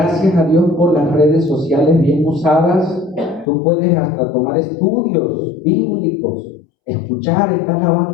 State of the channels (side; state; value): right; drops out; at 3.5 s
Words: a Dios por las redes sociales bien usadas, tú puedes hasta tomar estudios bíblicos. Escuchar, estás